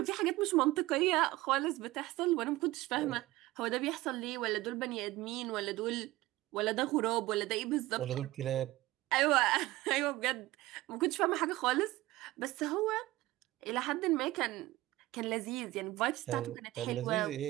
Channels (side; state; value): left; quieter; 18.1 dB